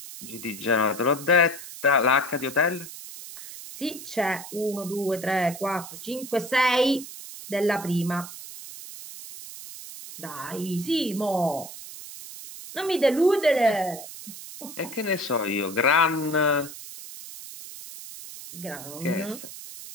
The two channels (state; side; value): noise; right; hiss, 13 dB below the sound